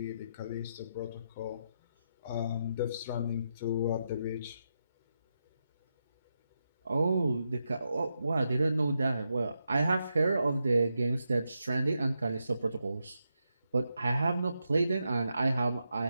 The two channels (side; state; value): both; inverted; correlation -0.85